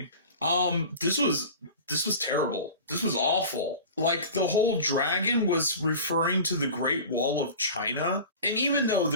This was terrible. This was awful. Like, the whole dragon was referring to the Great Wall of China. And even though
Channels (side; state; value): both; inverted; correlation -0.36